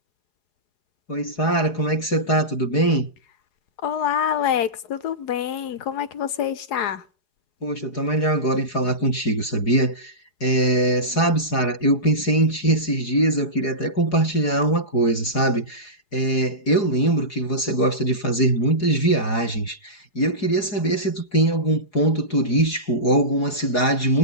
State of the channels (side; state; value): right; late; 4.8 ms